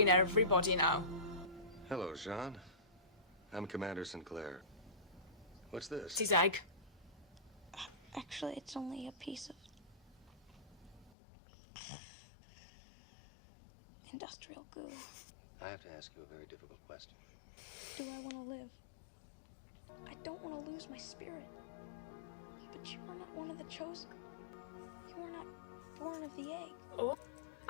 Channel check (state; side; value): drops out; right; at 11.1 s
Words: everybody now? Hello, Jean. I'm Commander Sinclair. What's this? It's his egg. Actually, it's only a piece of industrial goo. I have to ask you a very difficult question. Do I want to live? I don't want to lose my spirit. But you are not one of the chosen. You are not born of the egg. Oh,